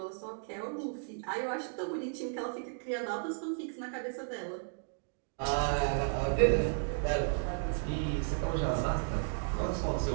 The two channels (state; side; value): silent; left; digital silence